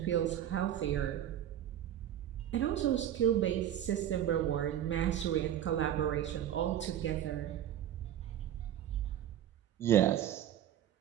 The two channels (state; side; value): quieter; left; 11.1 dB